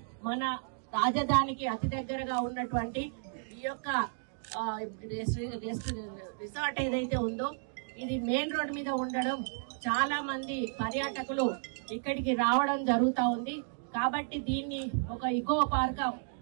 మన రాజధానికి అతి దగ్గరగా ఉన్నటువంటి ఈ యొక్క రిసార్ట్ ఏదైతే ఉందో ఇది మెయిన్ రోడ్ మీద ఉండడం చాలా మంది పర్యాటకులు ఇక్కడికి రావడం జరుగుతా ఉంది. కాబట్టి దీన్ని ఒక ఇకో పార్క్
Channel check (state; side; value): silent; left; digital silence